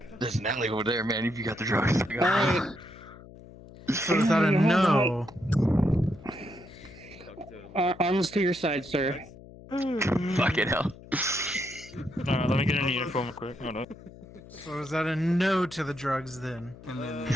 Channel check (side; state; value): left; noise; hum, 19 dB below the sound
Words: There's an alley over there, man. If you got the drugs. So is that a no? Arms to your side, sir. Fucking hell. Alright, let me get in uniform quick. Hold on. So is that a no to the drugs then? And then